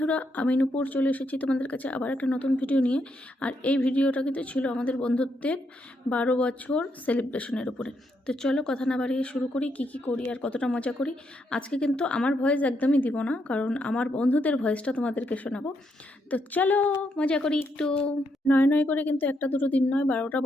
আমি নূপুর চলে এসেছি তোমাদের কাছে আবার একটা নতুন ভিডিও নিয়ে। আর এই ভিডিওটা কিন্তু ছিল আমাদের বন্ধুত্বের 12 বছর সেলিব্রেশনের উপরে। তো চলো কথা না বাড়িয়ে শুরু করি, কি করি আর কতটা মজা করি। আজকে কিন্তু আমার ভয়েস একদমই দিব না, কারণ আমার বন্ধুদের ভয়েসটা তোমাদেরকে শোনাবো। তো চলো মজা করি একটু। নয় করে কিন্তু একটা দুটো দিন নয়, 12টা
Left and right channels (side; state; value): both; normal; correlation 0.78